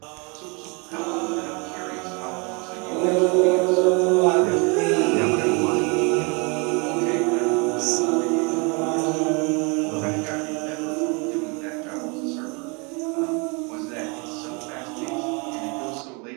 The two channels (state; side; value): quieter; left; 31.5 dB